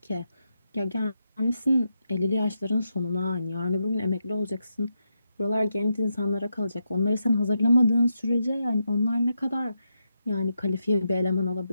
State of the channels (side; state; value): both; inverted; correlation -0.84